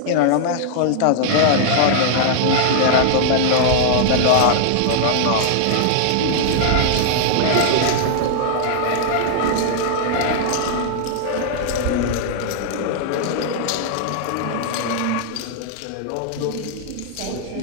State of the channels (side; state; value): both; different; correlation -0.01